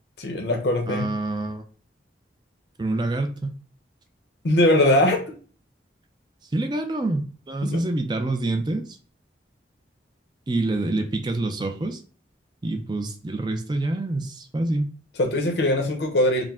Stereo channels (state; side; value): normal; both; correlation 0.46